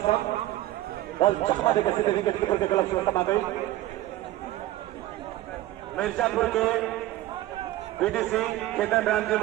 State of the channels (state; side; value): quieter; left; 15.4 dB